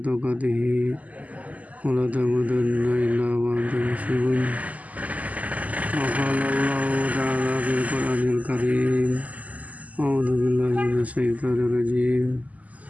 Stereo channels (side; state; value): left; late; 0.075 ms